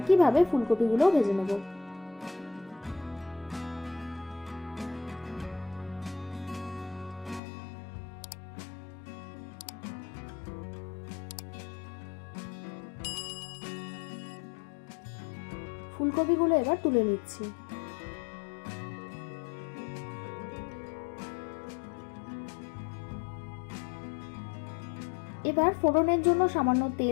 ফুলকপিগুলো ভেজে নেব। ফুলকপিগুলো এবার তুলে নিচ্ছি। এবার ফোড়নের জন্য সামান্য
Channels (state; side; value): drops out; right; at 7.4 s